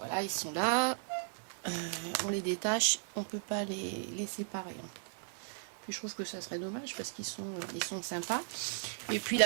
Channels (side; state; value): left; silent; 54 dB below the other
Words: ils sont là. On les détache, on peut pas les séparer. Hein. Puis je trouve que ça serait dommage parce qu'ils sont sympas. Et puis